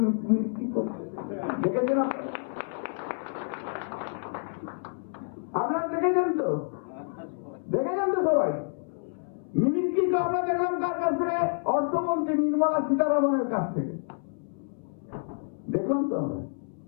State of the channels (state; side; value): silent; right; 59 dB below the other